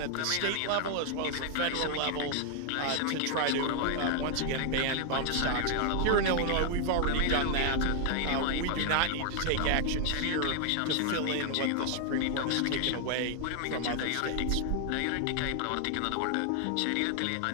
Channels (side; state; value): both; different; correlation 0.00